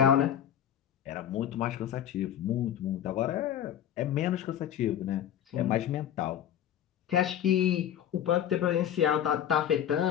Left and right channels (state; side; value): quieter; right; 10.3 dB